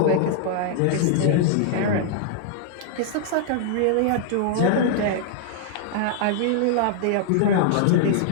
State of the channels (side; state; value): both; different; correlation -0.01